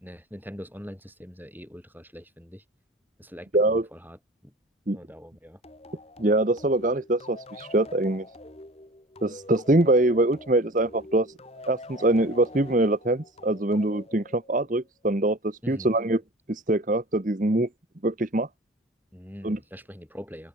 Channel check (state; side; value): normal; both; correlation 0.40